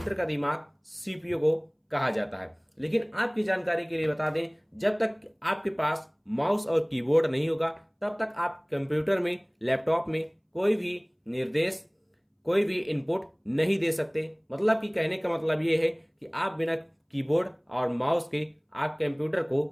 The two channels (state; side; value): identical; both; correlation 1.00